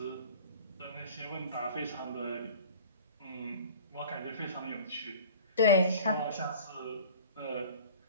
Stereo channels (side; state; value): both; inverted; correlation -0.43